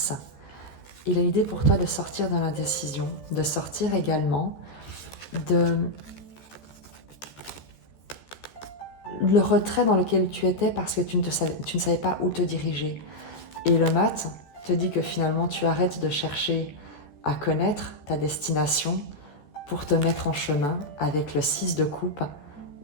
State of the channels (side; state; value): right; late; 13 ms